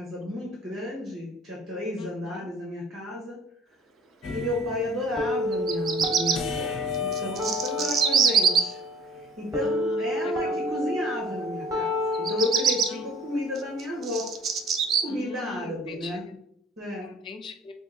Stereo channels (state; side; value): normal; both; correlation 0.52